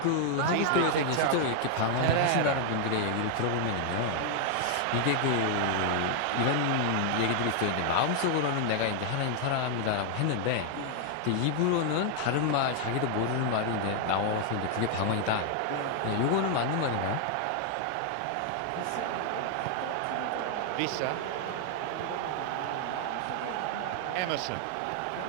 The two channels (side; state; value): both; different; correlation 0.00